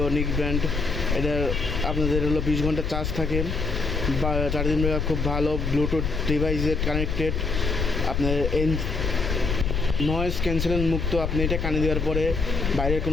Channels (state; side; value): noise; left; rumble, 1 dB below the sound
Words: নিক ব্র্যান্ড। এটা আপনাদের হলো 20 ঘন্টা চার্জ থাকে বা চার্জিং ব্যাকআপ খুব ভালো, ব্লুটুথ ডিভাইসে কানেক্টেড, আপনার নয়েজ ক্যান্সেলেশন মুক্ত। আপনি এটা কানে দেওয়ার পরে বাইরের